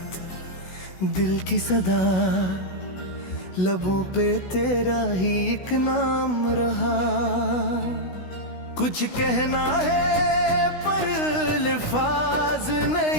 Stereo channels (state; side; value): late; right; 16 ms